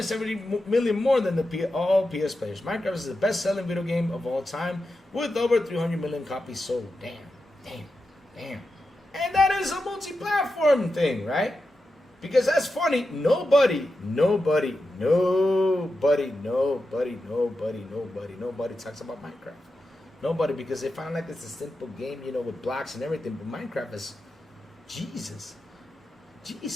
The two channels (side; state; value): both; normal; correlation 0.90